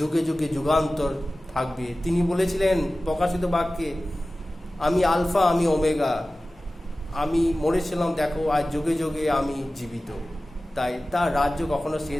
যুগে যুগান্তর থাকবে, তিনি বলেছিলেন প্রকাশিত বাক্যে, আমি আলফা, আমি ওমেগা, আমি মরেছিলাম, দেখো আজ যুগে যুগে আমি জীবিত। তাই তার রাজ্য কখনো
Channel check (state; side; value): normal; both; correlation 0.96